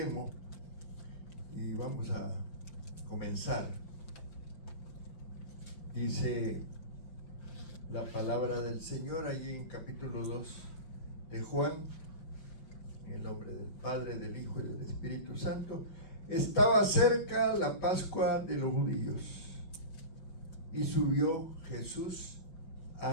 Y vamos a comenzar. Dice la palabra del Señor allí en capítulo 2 de Juan, en el nombre del Padre, del Hijo y del Espíritu Santo. Estaba cerca la Pascua de los judíos y subió Jesús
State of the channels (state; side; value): late; right; 5.2 ms